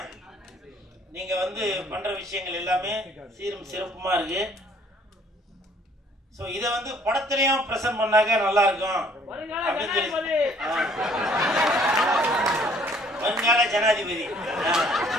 நீங்கள் பண்ணுற விஷயங்கள் எல்லாமே சீரும் சிறப்புமாக இருக்கு. ஸோ இதை படத்துலையும் ப்ரெசென்ட் பண்ணாக்க நல்லா இருக்கும் அப்படின்னு சொல்லி வருங்கால ஜனாதிபதி.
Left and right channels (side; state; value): both; normal; correlation 0.60